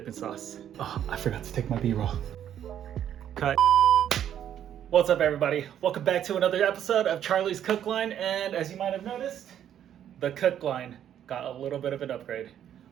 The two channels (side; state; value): left; quieter; 10.1 dB